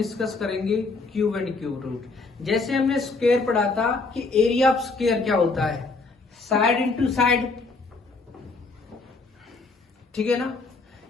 करेंगे क्यूब एंड क्यूब रूट। जैसे हमने स्क्वायर पढ़ा था कि एरिया ऑफ स्क्वायर क्या होता है, साइड इंटू साइड, ठीक है ना।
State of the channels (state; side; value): quieter; right; 3.8 dB